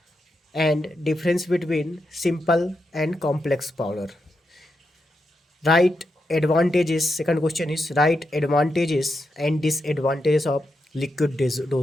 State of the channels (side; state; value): both; normal; correlation 0.85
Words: and difference between simple and complex powder. Right advantages, second question is right advantages and disadvantages of liquid